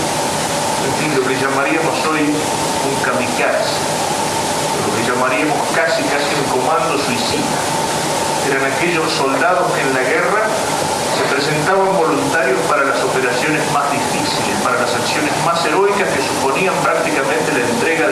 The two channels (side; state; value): both; identical; correlation 1.00